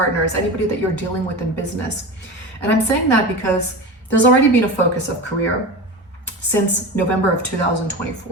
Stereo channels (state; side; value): normal; both; correlation 0.27